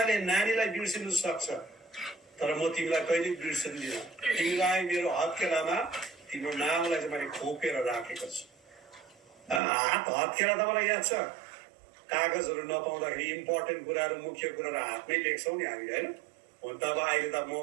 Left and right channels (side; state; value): left; drops out; at 9.6 s